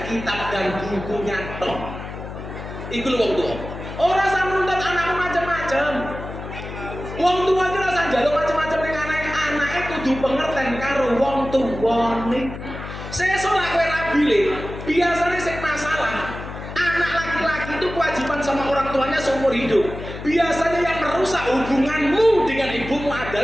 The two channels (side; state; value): left; noise; hum, 10 dB below the sound